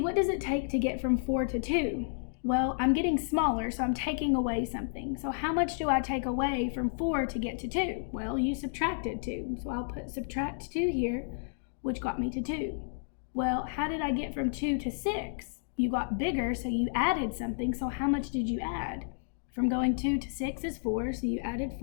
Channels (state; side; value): silent; right; digital silence